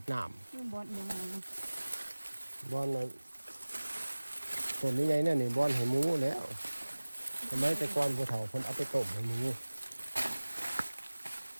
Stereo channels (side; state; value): both; inverted; correlation -1.00